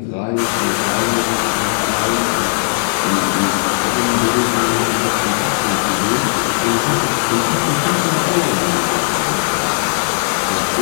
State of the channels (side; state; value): right; silent; 68 dB below the other